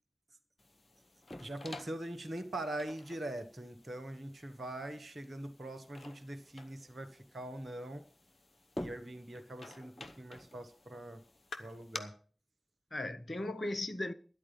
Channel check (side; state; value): both; normal; correlation 0.87